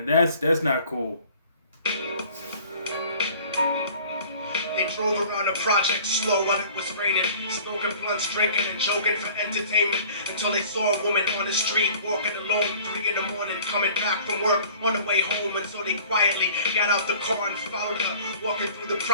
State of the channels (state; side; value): inverted; both; correlation -0.49